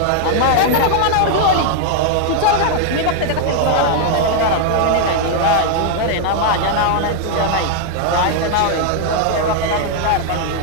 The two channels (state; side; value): different; both; correlation 0.00